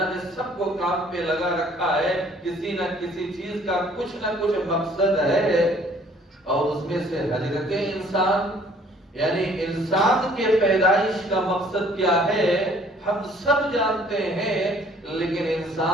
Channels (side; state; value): both; normal; correlation 0.58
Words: نے سب کو کام پہ لگا رکھا ہے۔ کسی نہ کسی چیز کا کچھ نہ کچھ مقصد ہے، اور اس میں سے حضرت انسان یعنی انسان کے پیدائش کا مقصد کیا ہے ہم سب جانتے ہیں، لیکن